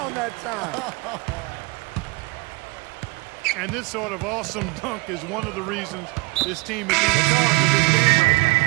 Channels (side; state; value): left; quieter; 25.9 dB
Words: that time. And this sort of awesome dunk is one of the reasons this team is in charge of this game right